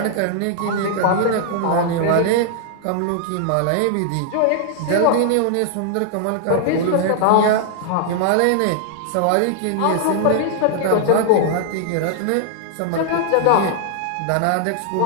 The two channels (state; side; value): different; both; correlation 0.00